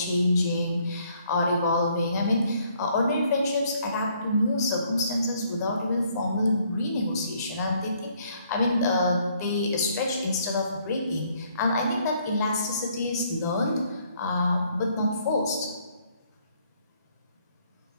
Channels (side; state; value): both; inverted; correlation -0.66